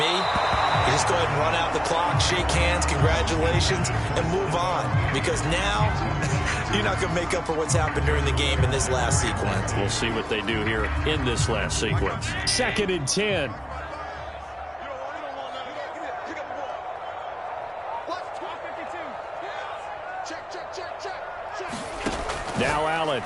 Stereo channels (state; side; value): identical; both; correlation 1.00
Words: you just go ahead and run out the clock, shake hands, congratulations, and move on. Because now, you're not going to make up for what's happened during the game in this last sequence. We'll see what they do here in this last sequence. 2nd and 10. Now Allen.